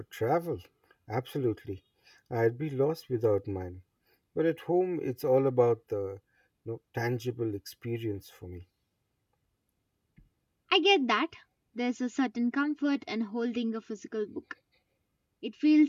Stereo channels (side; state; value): both; identical; correlation 1.00